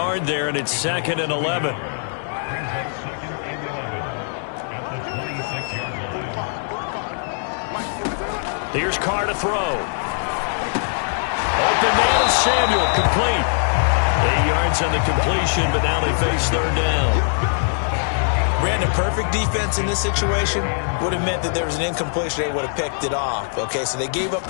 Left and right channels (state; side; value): silent; right; digital silence